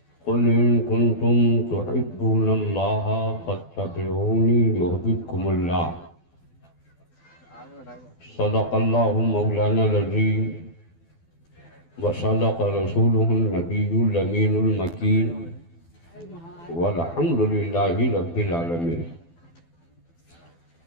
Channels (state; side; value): late; right; 12 ms